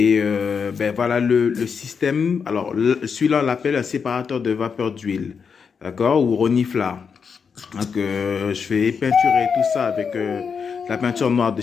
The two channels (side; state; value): right; quieter; 6.1 dB